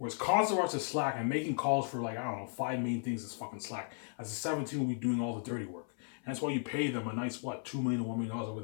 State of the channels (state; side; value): silent; right; 54 dB below the other